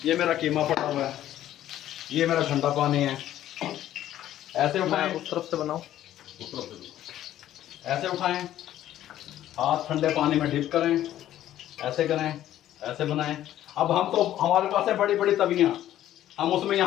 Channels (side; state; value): right; quieter; 12.6 dB